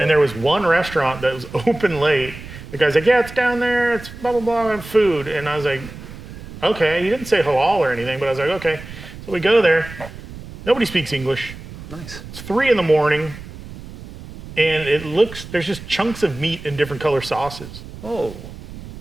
there was one restaurant that was open late. The guy's like, yeah, it's down there. It's blah, blah, blah, and food. And I was like, okay. He didn't say halal or anything, but I was like, okay. So we go there. Nobody speaks English. Nice. It's 3 a.m. And there's just chunks of meat in different color sauces. Oh.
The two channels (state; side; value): noise; right; rumble, 14 dB below the sound